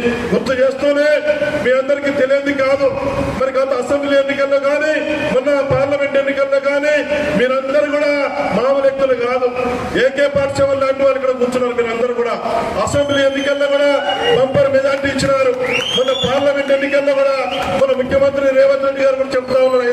గుర్తు చేస్తూనే మీ అందరికీ తెలియదు కాదు, మరి గత అసెంబ్లీ ఎన్నికల్లో కానీ మొన్న పార్లమెంట్ ఎన్నికల్లో కానీ మీరందరూ కూడా మామూలు వ్యక్తులు కాదు. ఏకే పాఠశాల లాంటి వాళ్ళు ఇక్కడ కూర్చున్నారు. మీరందరూ కూడా అసెంబ్లీ ఎన్నికల్లో కూడా బంపర్ మెజార్టీ ఇచ్చినారు. మొన్న పార్లమెంట్ ఎన్నికల్లో కూడా మన ముఖ్యమంత్రి రేవంత్ రెడ్డి గారు కూడా చెప్తా ఉన్నారు,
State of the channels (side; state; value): both; identical; correlation 1.00